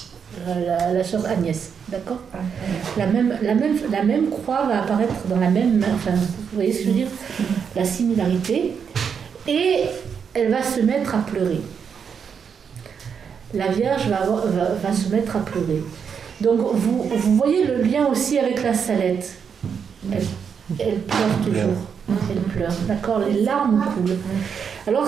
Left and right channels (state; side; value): quieter; left; 6.8 dB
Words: la sœur Agnès, d'accord? La même croix va apparaître dans la même main, enfin, vous voyez ce que je veux dire? La similarité. Et elle va se mettre à pleurer. La Vierge va se mettre à pleurer. Donc, vous voyez le lien aussi avec la Salette. Elle pleure toujours. Elle pleure, d'accord? Les larmes coulent. Alors,